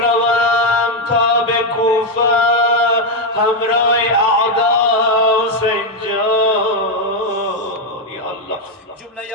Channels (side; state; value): both; normal; correlation 0.04